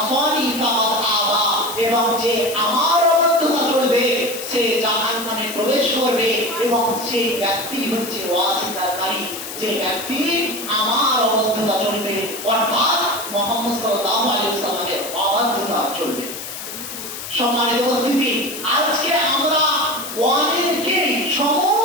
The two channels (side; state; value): left; noise; hiss, 9 dB below the sound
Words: ফাকাদ আবা, এবং যে আমার অবাধ্যতা চলবে সে জাহান্নামে প্রবেশ করবে। এবং সেই ব্যক্তি হচ্ছে অস্বীকারী, যে ব্যক্তি আমার অবাধ্যতা চলবে, অর্থাৎ মুহাম্মদ সাল্লাল্লাহু আলাইহি ওয়াসাল্লামের অবাধ্যতা চলবে। সম্মানিত উপস্থিতি, আজকে আমরা অনেকেই,